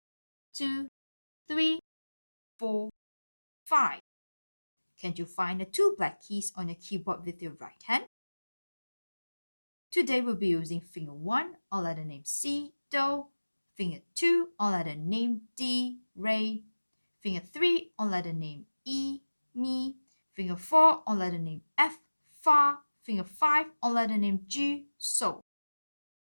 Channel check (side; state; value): both; inverted; correlation -1.00